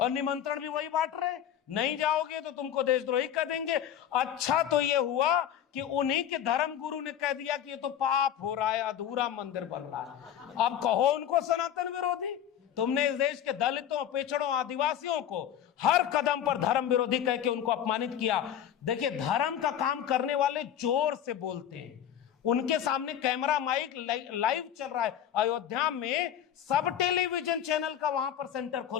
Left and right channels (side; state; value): right; quieter; 10.0 dB